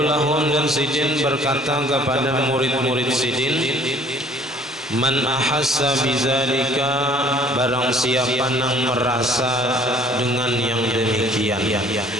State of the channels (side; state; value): both; normal; correlation 0.55